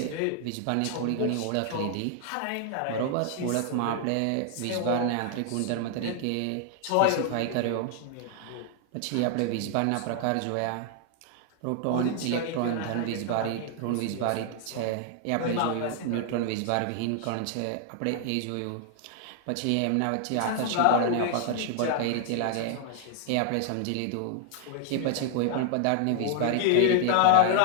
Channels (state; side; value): different; both; correlation 0.00